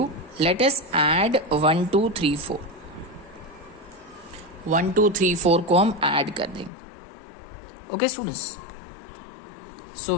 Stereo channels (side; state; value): right; drops out; at 6.7 s